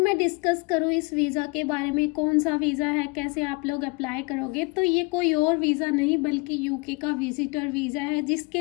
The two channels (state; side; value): quieter; right; 27.7 dB